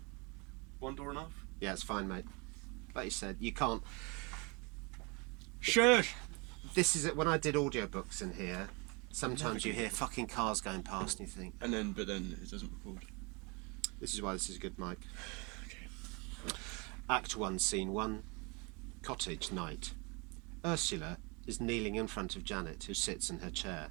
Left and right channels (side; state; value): left; quieter; 30.3 dB